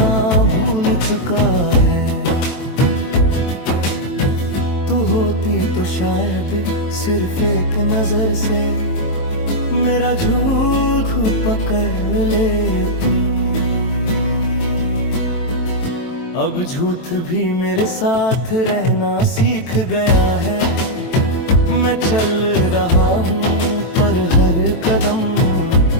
भूल चुका है। तू होती तो शायद सिर्फ एक नजर से मेरा झूठ पकड़ लेती। अब झूठ भी मेरे साथ रहना सीख गया है। मैं चल रहा हूँ पर हर कदम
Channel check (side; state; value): right; late; 23 ms